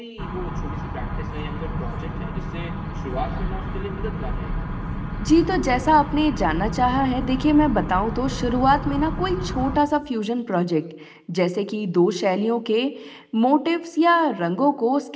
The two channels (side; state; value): both; identical; correlation 1.00